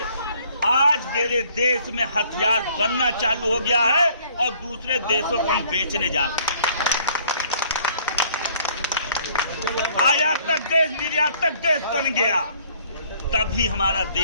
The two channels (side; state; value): both; inverted; correlation -0.60